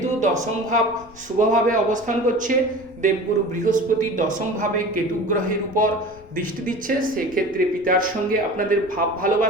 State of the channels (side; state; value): left; noise; rumble, 23 dB below the sound